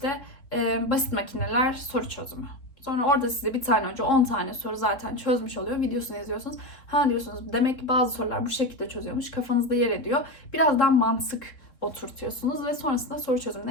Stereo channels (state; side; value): late; right; 3.7 ms